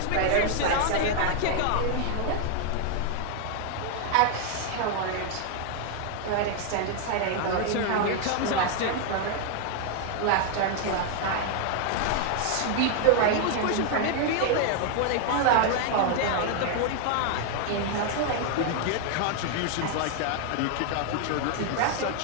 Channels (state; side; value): different; both; correlation 0.00